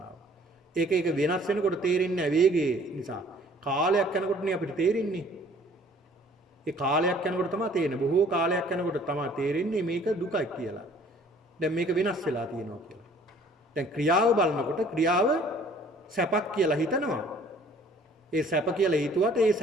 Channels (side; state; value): both; normal; correlation 0.55